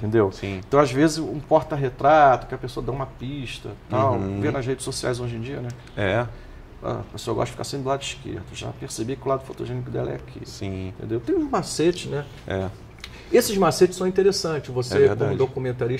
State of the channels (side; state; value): both; identical; correlation 1.00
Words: Sim. Então, às vezes, um porta-retrato, que a pessoa dá uma pista, tal, vê nas redes sociais hoje em dia, né? A pessoa gosta de ficar sempre do lado esquerdo. Já percebi que o lado fotogênico dela é aqui. Sim. Entendeu? Tem uns macetes, né? Esses macetes são interessantes. Você, como